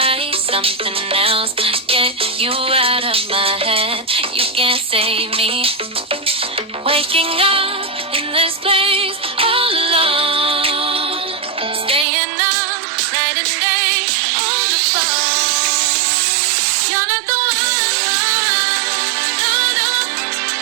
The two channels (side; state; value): left; drops out; at 12.1 s